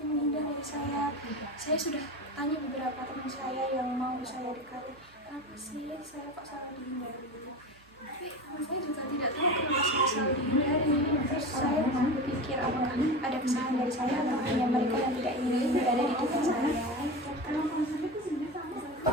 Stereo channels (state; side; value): noise; right; hum, 28 dB below the sound